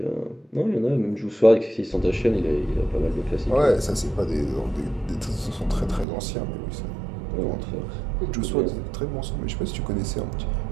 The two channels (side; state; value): left; drops out; at 6.1 s